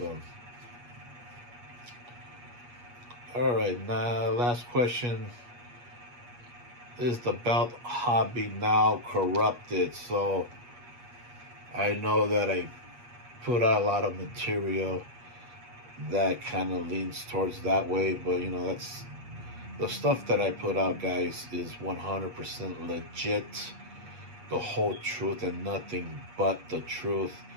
all right, now last question. Is the belt hobby now corrupted? So, I know that I put out a lot of material that kind of leans towards that way, but you know, that's the stuff that I put out, guys, is 100% legit, the whole truth and nothing but the truth.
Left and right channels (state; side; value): late; left; 8.3 ms